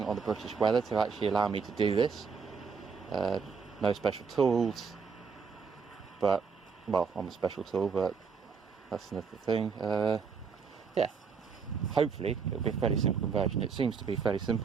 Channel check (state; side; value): quieter; left; 5.7 dB